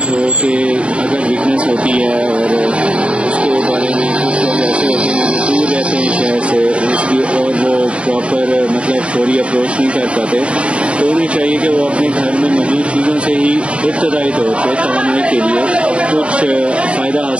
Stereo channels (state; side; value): late; left; 0.061 ms